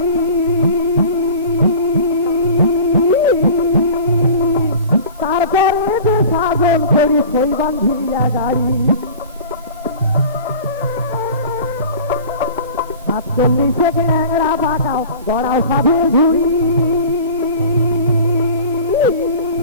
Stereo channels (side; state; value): both; inverted; correlation -0.40